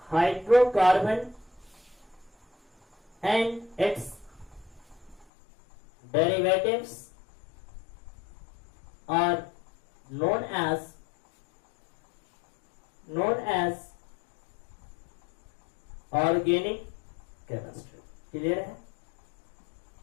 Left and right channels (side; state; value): right; drops out; at 5.2 s